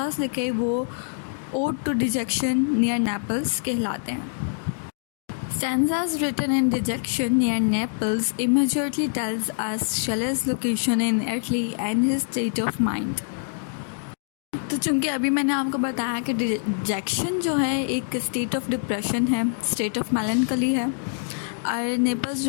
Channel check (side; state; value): right; silent; digital silence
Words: लिखे वो ode to dejection near Naples कहलाते हैं। Stanzas written in dejection near Naples immediately tells us Shelley's location in Italy and his state of mind. तो चूँकि अभी मैंने आपको बताया कि डिजेक्शन जो है एक स्टेट ऑफ डिप्रेशन है, स्टेट ऑफ मेलनकली है, और नेपल्स